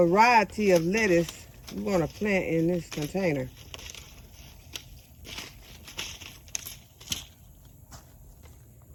of lettuce we want to plant in this container.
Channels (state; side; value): identical; both; correlation 1.00